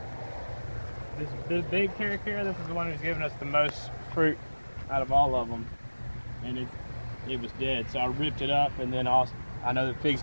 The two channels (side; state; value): both; inverted; correlation -1.00